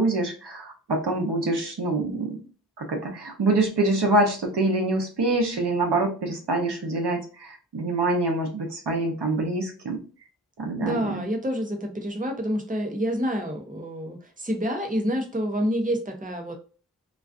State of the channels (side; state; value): both; normal; correlation 0.38